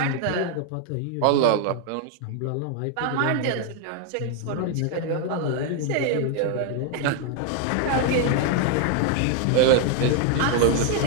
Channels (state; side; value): different; both; correlation 0.00